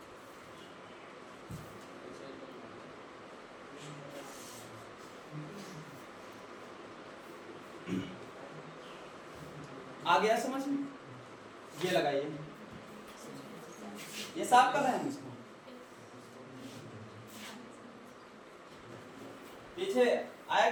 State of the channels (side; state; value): both; identical; correlation 1.00